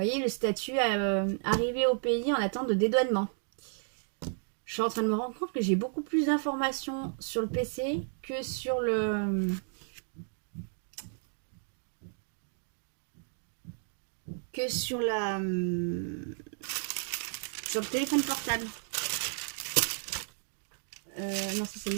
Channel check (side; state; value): left; silent; 56 dB below the other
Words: le statut arrivé au pays en attente de dédouanement. Je suis en train de me rendre compte que j'ai beaucoup plus d'informations sur le PC que sur le que sur sur le téléphone portable. Non, ça c'est le